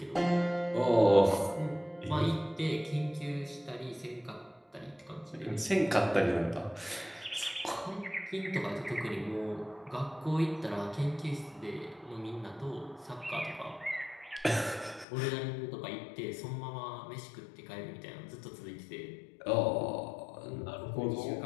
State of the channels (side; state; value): right; drops out; at 15.1 s